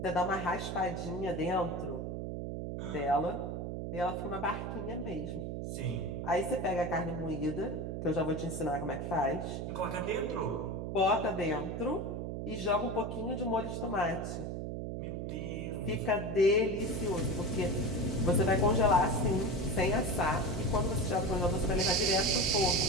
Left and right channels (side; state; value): right; noise; hum, 4 dB below the sound